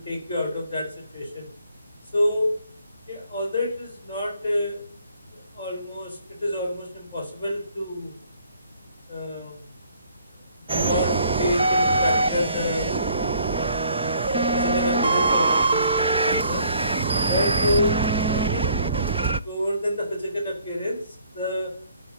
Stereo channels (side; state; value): both; inverted; correlation -0.62